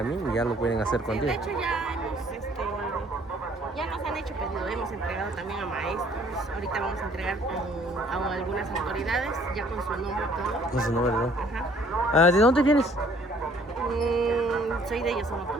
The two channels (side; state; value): both; normal; correlation 0.58